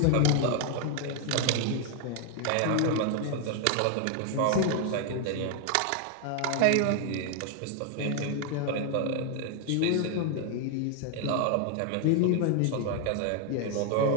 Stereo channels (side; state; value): both; different; correlation 0.00